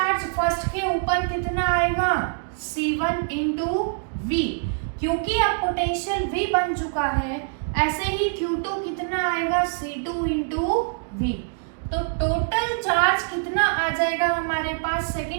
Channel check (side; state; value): left; silent; digital silence